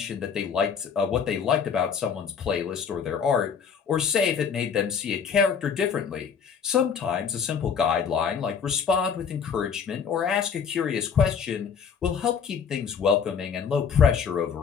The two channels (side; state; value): right; quieter; 6.8 dB